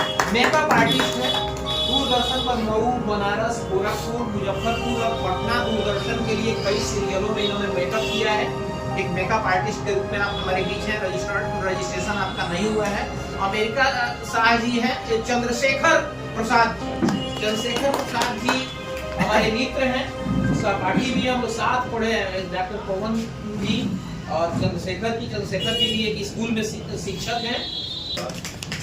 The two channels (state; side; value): identical; both; correlation 1.00